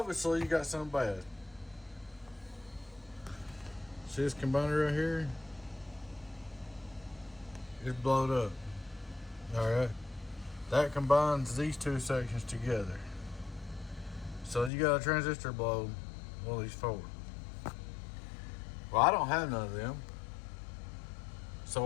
you got something bad. See this combiner right here? It's blowed up. Alright. That combines these two sections together. So you got a transistor blow one of these forward. Well, I don't have none of them. So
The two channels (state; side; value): drops out; right; at 14.7 s